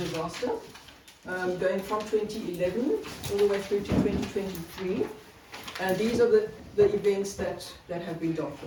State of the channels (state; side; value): identical; both; correlation 1.00